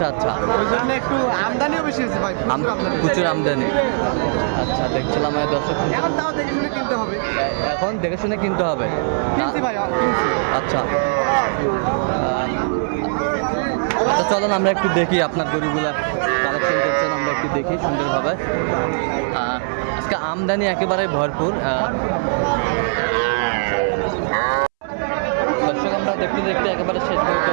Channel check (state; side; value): silent; left; 66 dB below the other